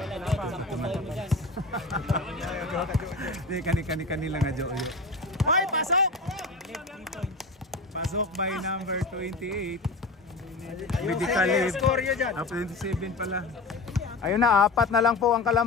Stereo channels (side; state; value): right; quieter; 3.2 dB